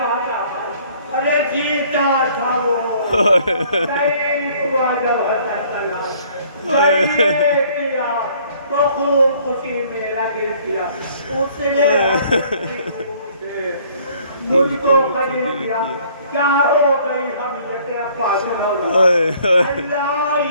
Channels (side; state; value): both; inverted; correlation -0.58